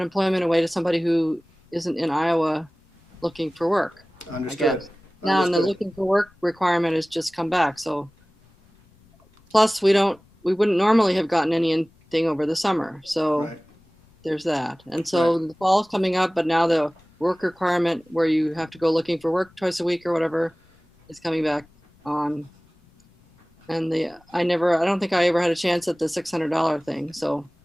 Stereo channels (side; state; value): both; normal; correlation 0.98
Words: away to somebody who isn't in Iowa looking for work. Understood. Now, and the looking for work requirement has just come back. So, plus we wouldn't normally have gotten anything over the summer. So Right. There's that. And so the fall's coming up, but now the work requirement where you have to go looking for work twice a week or whatever is coming back on. And I don't think I ever had a chance at the $600 thing. So